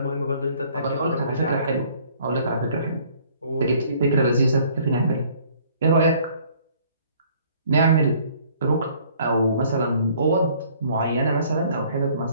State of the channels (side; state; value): both; inverted; correlation -0.58